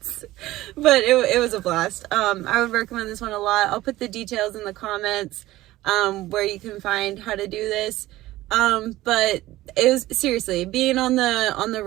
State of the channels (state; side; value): quieter; left; 16.6 dB